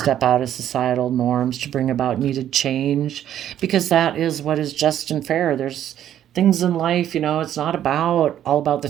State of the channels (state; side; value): quieter; left; 11.0 dB